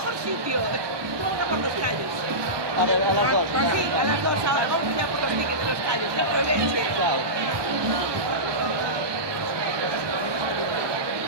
sitio. Vamos por los callos. A ver, a las dos. Sí, a las 2 ahora. Vamos ya por los tickets de los callos. No hay problema. Chao.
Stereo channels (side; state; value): left; late; 1.2 ms